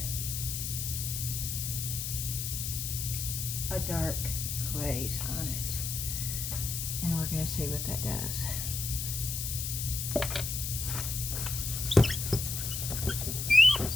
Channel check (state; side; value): noise; left; hiss, 3 dB below the sound